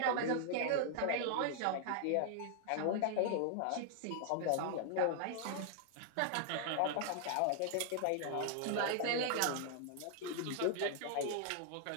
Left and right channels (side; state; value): both; different; correlation 0.00